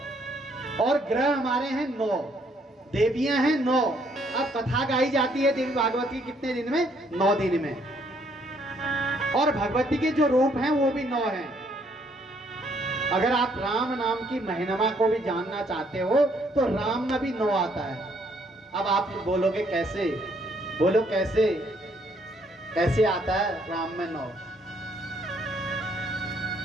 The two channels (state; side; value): normal; both; correlation 0.68